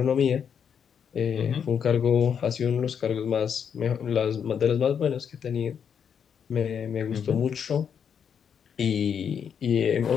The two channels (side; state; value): right; quieter; 7.6 dB